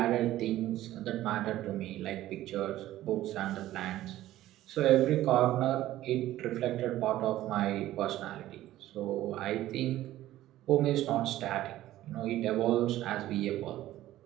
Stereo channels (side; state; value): left; quieter; 14.5 dB